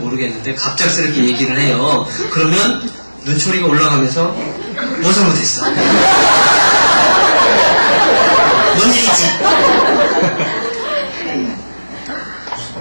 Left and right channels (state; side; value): inverted; both; correlation -1.00